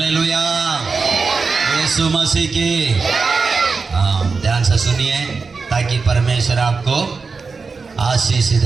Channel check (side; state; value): left; quieter; 4.6 dB